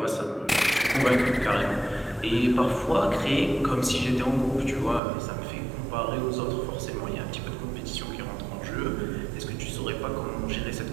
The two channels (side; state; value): left; drops out; at 5.0 s